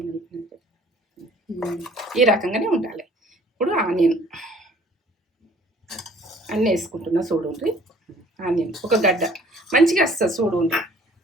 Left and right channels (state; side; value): normal; both; correlation 0.55